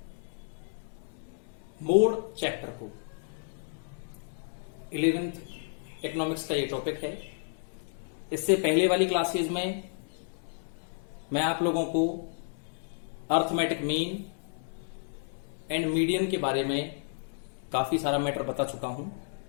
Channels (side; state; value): right; silent; 57 dB below the other